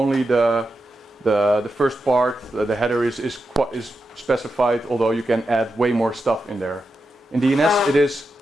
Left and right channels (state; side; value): normal; both; correlation 0.88